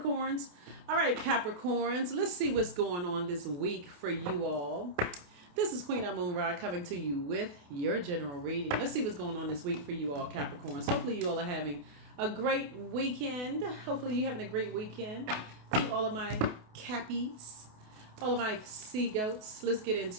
All right, Capricorns, let's see what's going on this week for you all. This is Queen Amun Ra coming to you with your general reading. Let's see what's going on this week for you all, Capricorns. Hopefully, you all are having a great weekend. Hopefully, you're having a great weekend. To all of my Cappies, all of my sea goats, let's get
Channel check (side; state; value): left; late; 28 ms